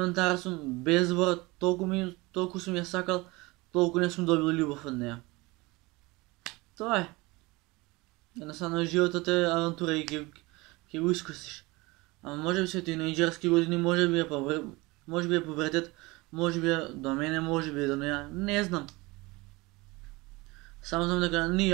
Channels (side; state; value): left; quieter; 23.1 dB